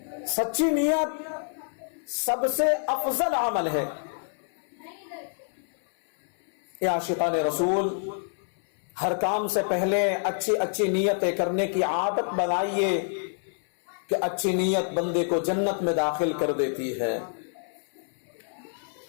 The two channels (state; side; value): silent; right; 60 dB below the other